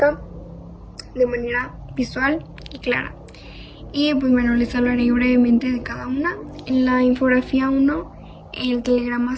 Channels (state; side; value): identical; both; correlation 1.00